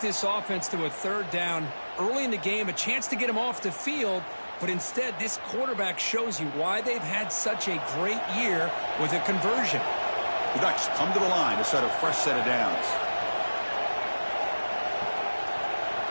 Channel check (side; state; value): both; inverted; correlation -1.00